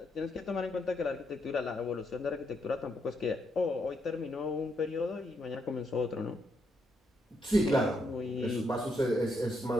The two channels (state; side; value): normal; both; correlation 0.78